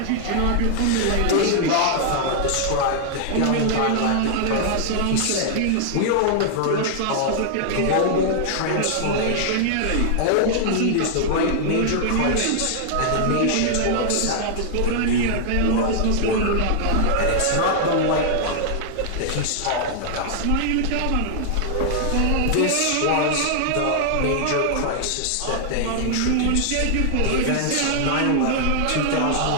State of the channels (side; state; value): both; different; correlation -0.01